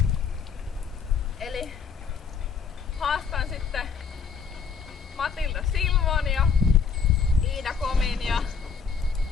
Eli haastan sitten Matilda Silvon ja Iida Komin ja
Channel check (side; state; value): right; quieter; 5.9 dB